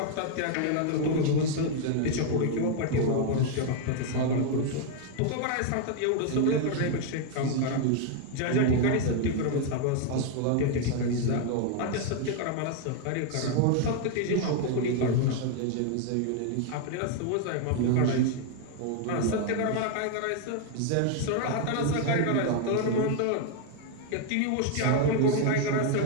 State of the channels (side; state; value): both; different; correlation 0.00